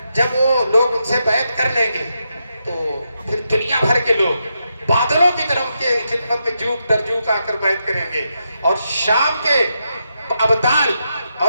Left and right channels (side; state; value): both; inverted; correlation -0.84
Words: جب وہ لوگ ان سے بیعت کر لیں گے تو پھر دنیا بھر کے لوگ بادلوں کی طرح ان کے خدمت میں جھوک در جھوک آ کر بیعت کریں گے، اور شام کے ابدال